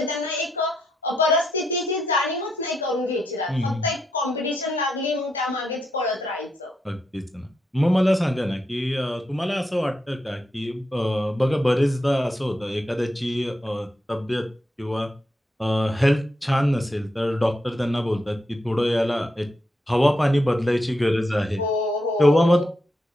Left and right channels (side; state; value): both; normal; correlation 0.82